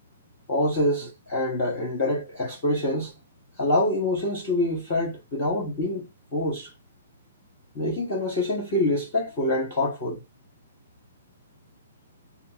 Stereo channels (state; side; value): inverted; both; correlation -0.32